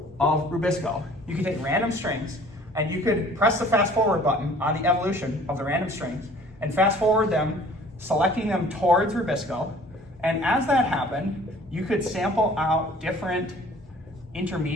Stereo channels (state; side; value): normal; both; correlation 0.51